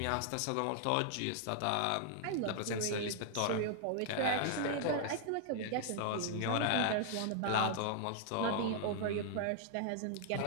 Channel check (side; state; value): both; different; correlation 0.00